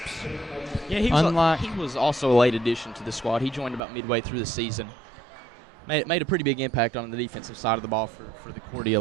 Yeah, he was also a late addition to the squad. He joined about midway through the season. Made a pretty big impact on the defensive side of the ball for the Cordia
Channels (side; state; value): left; drops out; at 3.8 s